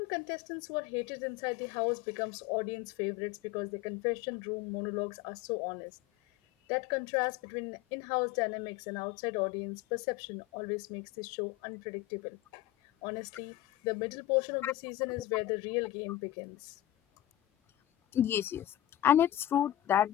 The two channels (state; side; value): quieter; right; 13.8 dB